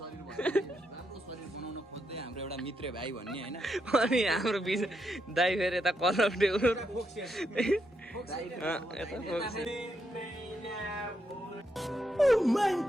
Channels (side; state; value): both; normal; correlation 0.80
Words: बनाउन खोज्दै हाम्रो एउटा मित्र भाइ भन्ने हैन अनि हाम्रो दाइ फेरि यता कलर टेउरो